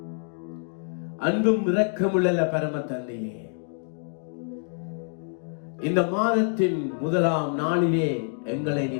அன்பும் இரக்கமுள்ள பரம தந்தையே, இந்த மாதத்தின் முதலாம் நாளிலே எங்களை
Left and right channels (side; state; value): right; silent; 61 dB below the other